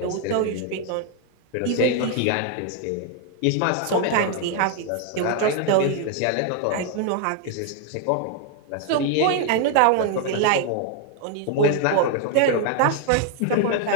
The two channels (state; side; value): different; both; correlation 0.00